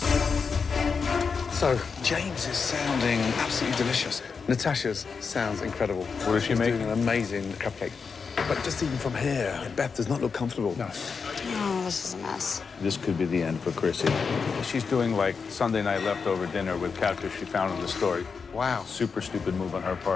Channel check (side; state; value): right; quieter; 5.4 dB